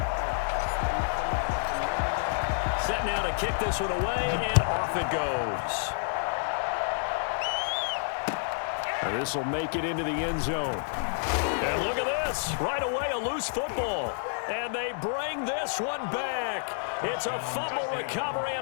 Set now to kick this one away, and off it goes. And this will make it into the end zone. And look at this. Right away, a loose football. And they bring this one back. It's a fumble recovery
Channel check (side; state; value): right; silent; digital silence